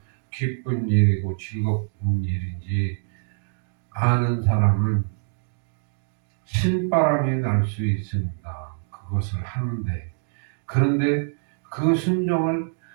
기쁜 일이고 즐거운 일인지 아는 사람은 신바람이 날 수 있습니다. 그것을 하는데 그런데 그 순종을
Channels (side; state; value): left; silent; digital silence